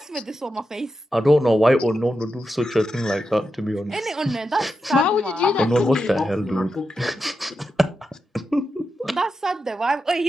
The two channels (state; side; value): normal; both; correlation 0.88